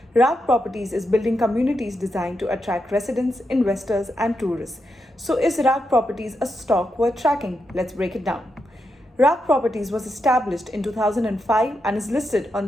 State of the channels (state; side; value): normal; both; correlation 0.84